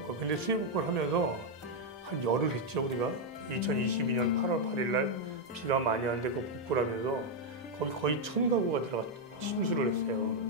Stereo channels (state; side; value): normal; both; correlation 0.00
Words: 근데 수해복권 하면서 한 열흘 했죠 우리가. 2022년 8월 8일 날 비가 많이 왔는데 그 복구라면서 거기 거의 1000가구가 들어가 침수를 했어요.